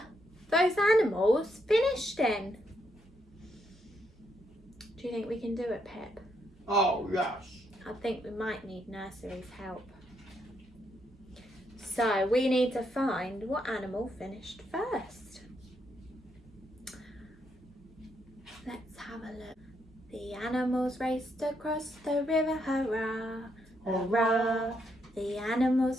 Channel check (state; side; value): normal; both; correlation 0.77